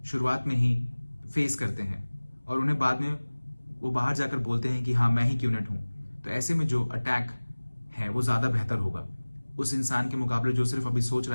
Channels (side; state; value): both; inverted; correlation -1.00